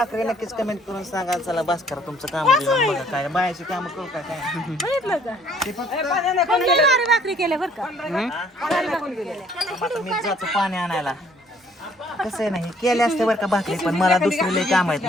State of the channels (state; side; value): normal; both; correlation 0.61